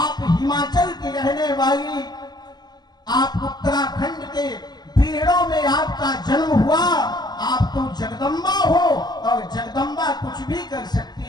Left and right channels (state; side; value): late; right; 0.20 ms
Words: हिमाचल की रहने वाली, आप उत्तराखंड के पीड़ों में आपका जन्म हुआ, आप तो जगदम्बा हो, और जगदम्बा कुछ भी कर